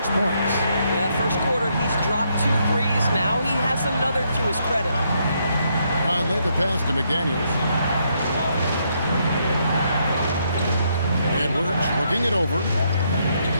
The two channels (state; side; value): inverted; both; correlation -0.75